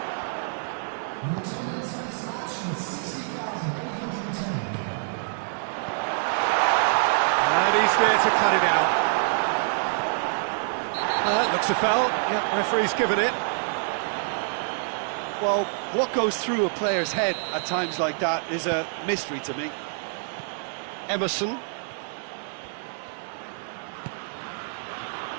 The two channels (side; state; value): left; silent; digital silence